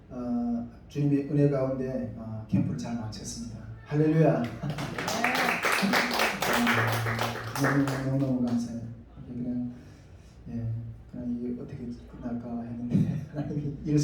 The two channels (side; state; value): both; identical; correlation 1.00